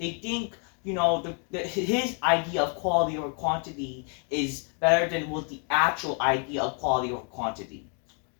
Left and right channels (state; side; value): quieter; right; 40.0 dB